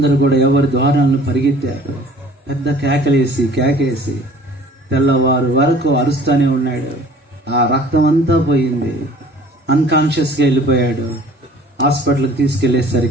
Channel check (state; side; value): normal; both; correlation 0.50